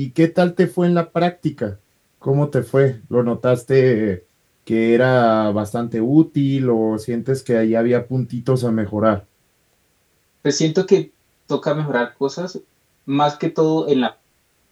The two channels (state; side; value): identical; both; correlation 1.00